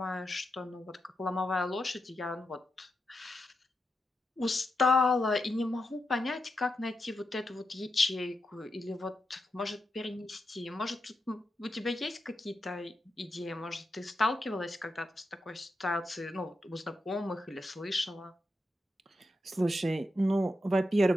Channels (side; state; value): both; normal; correlation 0.86